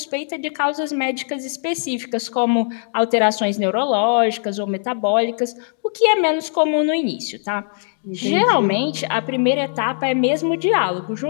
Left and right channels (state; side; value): silent; right; digital silence